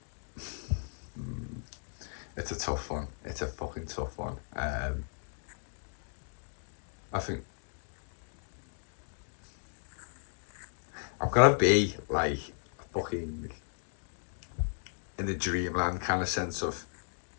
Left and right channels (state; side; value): silent; right; digital silence